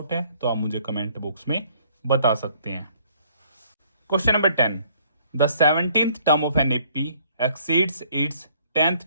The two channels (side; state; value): both; inverted; correlation -0.61